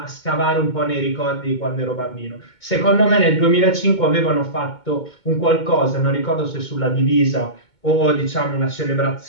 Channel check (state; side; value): late; right; 2.2 ms